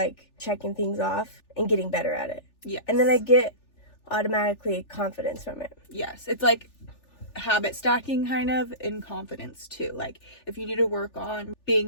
checking things off and getting better at it. Yeah. And then I get automatically confidence from it. Yes. It's like habit stacking kind of in confidence too. Like if you need to work on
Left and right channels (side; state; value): right; late; 3.4 ms